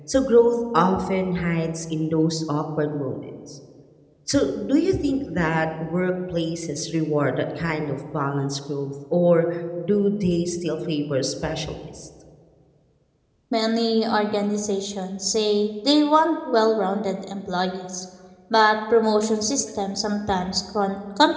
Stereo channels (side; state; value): both; identical; correlation 1.00